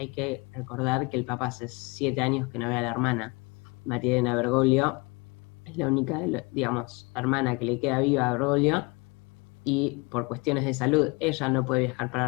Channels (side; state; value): right; quieter; 28.1 dB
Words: que recordar que el Papa hace 7 años que no ve a la hermana, María Elena Bergoglio. Es la única, digamos, hermana que le queda viva a Bergoglio, y por cuestiones de salud ella no puede viajar para